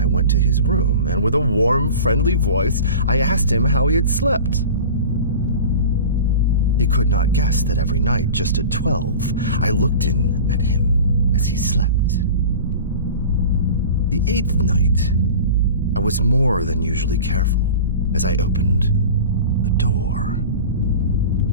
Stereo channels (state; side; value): inverted; both; correlation -0.36